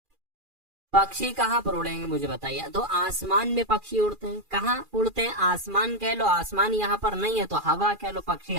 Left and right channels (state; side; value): late; left; 2.4 ms